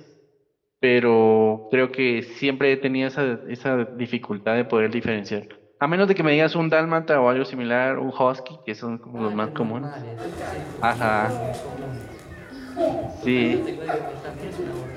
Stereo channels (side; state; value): both; identical; correlation 1.00